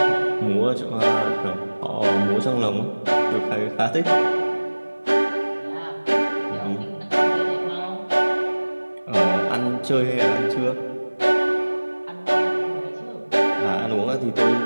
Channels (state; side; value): inverted; both; correlation -1.00